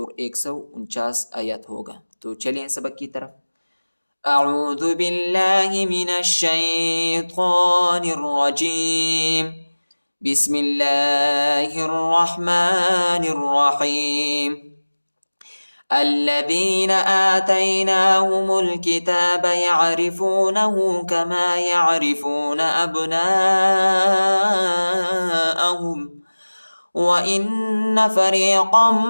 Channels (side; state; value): both; inverted; correlation -1.00